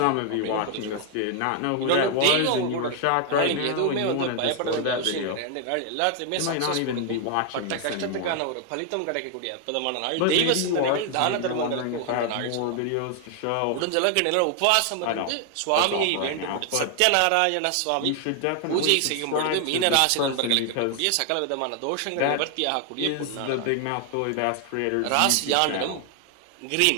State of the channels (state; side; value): different; both; correlation 0.00